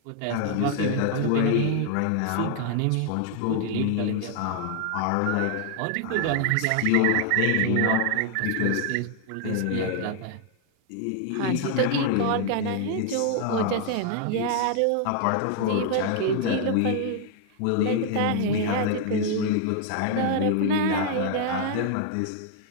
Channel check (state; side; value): different; both; correlation 0.00